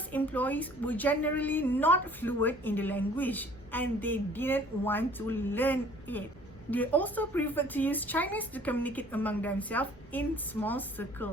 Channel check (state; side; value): normal; both; correlation 0.53